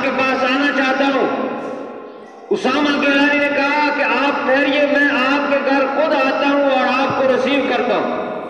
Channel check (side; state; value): both; identical; correlation 1.00